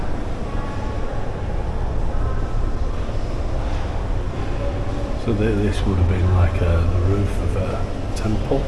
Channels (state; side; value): identical; both; correlation 1.00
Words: So this would have been like the roof of a temple.